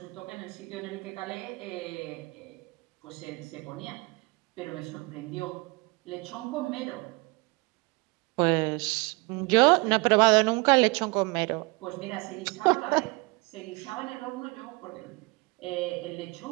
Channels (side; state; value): left; quieter; 27.3 dB